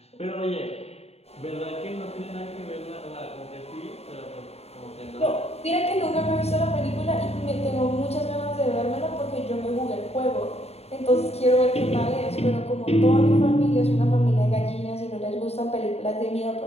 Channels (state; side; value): late; right; 0.30 ms